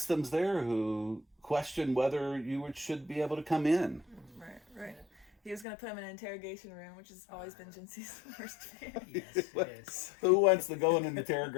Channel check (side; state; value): right; drops out; at 5.7 s